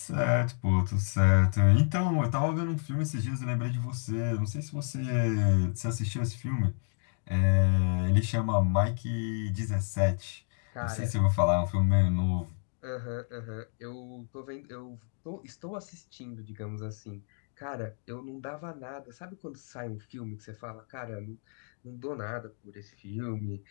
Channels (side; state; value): right; silent; 57 dB below the other